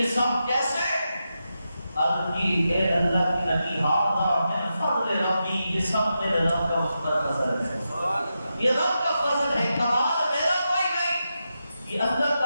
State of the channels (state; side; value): inverted; both; correlation -0.88